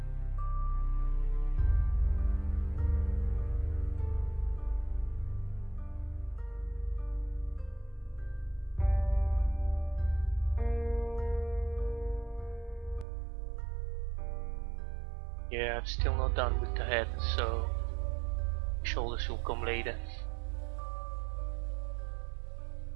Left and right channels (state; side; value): drops out; left; at 13.1 s